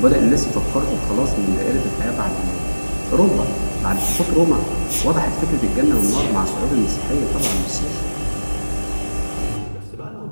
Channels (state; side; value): inverted; both; correlation -1.00